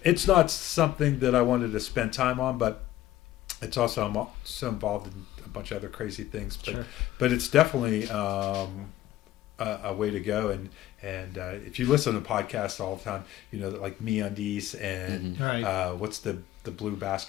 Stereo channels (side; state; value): right; quieter; 14.2 dB